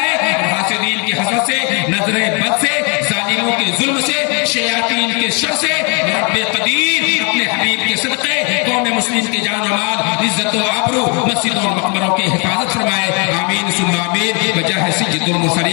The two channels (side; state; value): right; quieter; 33.5 dB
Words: اور حاسدین کی حسد سے، نظر بد سے، ظالموں کے ظلم سے، شیاطین کے شر سے رب قدیر اپنے حبیب کے صدقے قوم مسلم کی جان و مال، عزت و آبرو، مسجدوں اور مقبروں کی حفاظت فرمائے، آمین ثم آمین۔ بجاہ سید